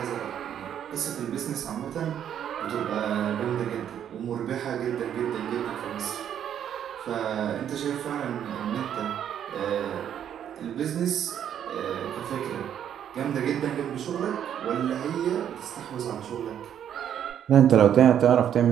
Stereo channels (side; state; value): left; quieter; 9.6 dB